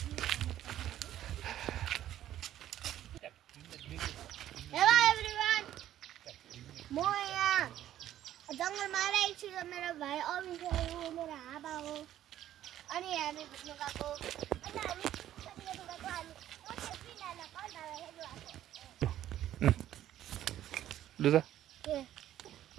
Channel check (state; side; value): quieter; left; 12.2 dB